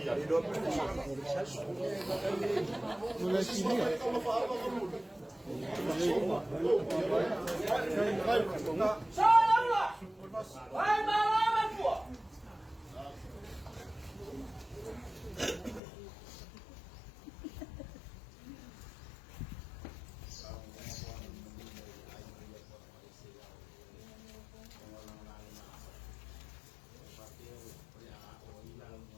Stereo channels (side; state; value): right; drops out; at 15.8 s